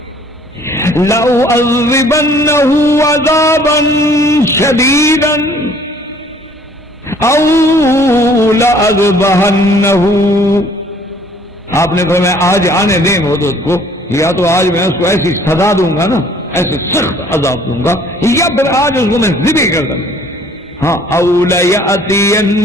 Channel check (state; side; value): normal; both; correlation 0.57